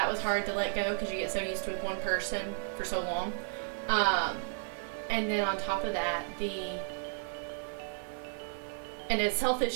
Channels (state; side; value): silent; left; 56 dB below the other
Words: was hard to let go because you get so used to one person for so long. And then on top of that, and as